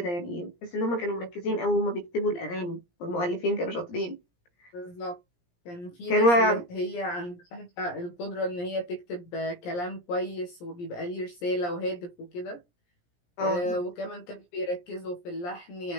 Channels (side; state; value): right; late; 17 ms